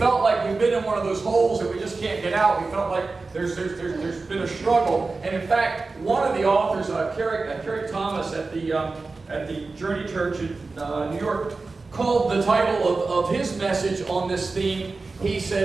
like we've been in one of those holes that we just can't get out. We felt like there's been a struggle. And in fact, one of the authors, Carrie Thomas at the Journey Church in New York, called the title of his message on this theme, he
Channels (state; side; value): quieter; left; 3.8 dB